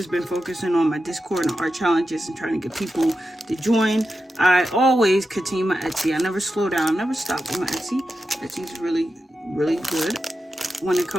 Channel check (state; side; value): normal; both; correlation 0.90